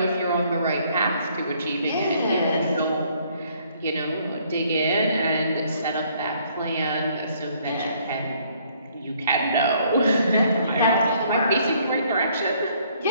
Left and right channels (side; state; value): both; inverted; correlation -0.64